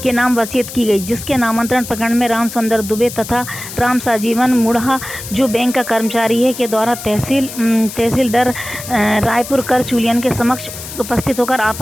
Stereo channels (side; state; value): left; noise; hiss, 11 dB below the sound